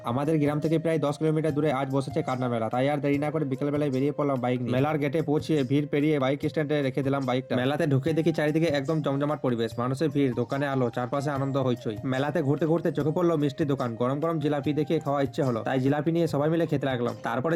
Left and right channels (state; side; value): identical; both; correlation 1.00